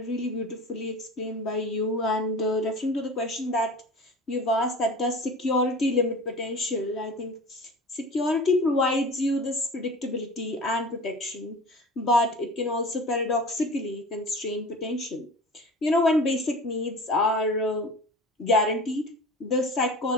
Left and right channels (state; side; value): normal; both; correlation 0.37